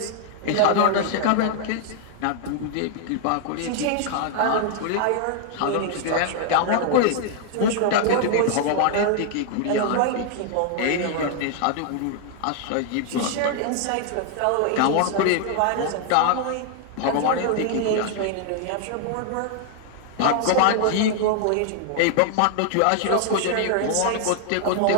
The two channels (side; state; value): both; different; correlation 0.00